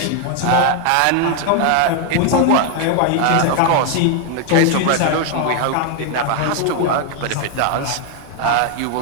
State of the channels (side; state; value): both; different; correlation 0.00